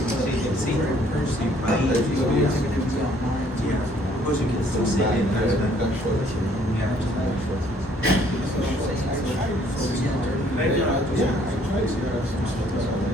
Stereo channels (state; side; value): normal; both; correlation 0.62